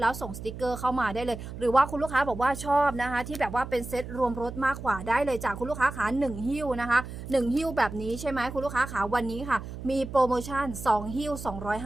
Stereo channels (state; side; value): noise; right; hum, 10 dB below the sound